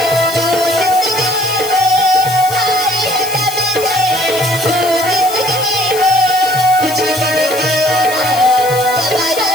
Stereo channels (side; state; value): left; noise; hiss, 10 dB below the sound